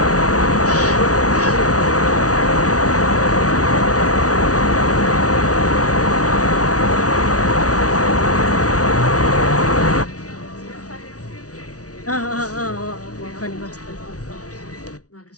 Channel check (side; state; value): right; late; 0.67 ms